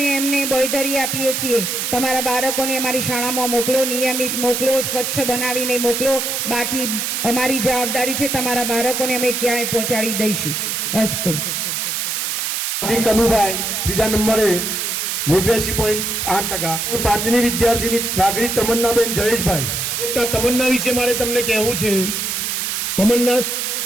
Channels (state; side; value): noise; right; hiss, 1 dB below the sound